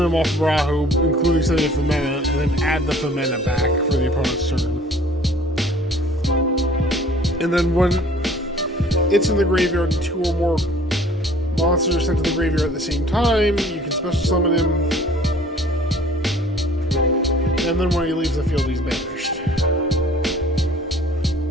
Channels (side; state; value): both; normal; correlation 0.52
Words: them off of Rahu, including setting a Femina, and then add the Femina back for the opponent's turn. And then when it's in the graveyard and 2 or more monsters are sent to the graveyard at the same time, you can special summon him. and then when he leaves the field, he's banished.